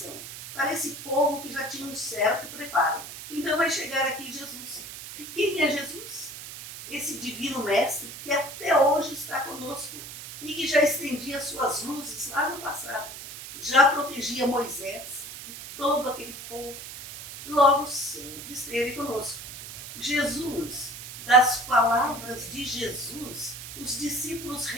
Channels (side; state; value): right; noise; hiss, 11 dB below the sound